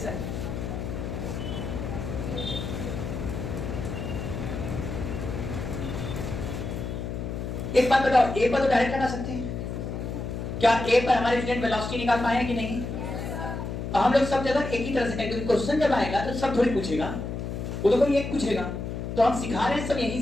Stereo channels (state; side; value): noise; left; hum, 5 dB below the sound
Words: एक बात बताओ, ए पर तो डायरेक्ट लगा सकते हैं, क्या ए पर हमारे स्टूडेंट वेलोसिटी निकाल पाए हैं कि नहीं? हम लोग सब जगह एक ही तरह से करेंगे, क्योंकि क्वेश्चन जब आएगा तो सब थोड़ी पूछेगा, वो तो कोई एक पूछेगा। तो हम सिखा रहे हैं सब यहीं